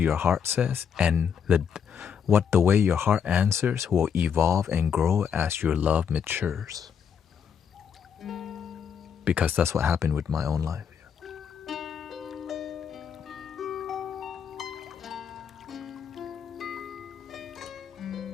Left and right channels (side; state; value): right; quieter; 7.4 dB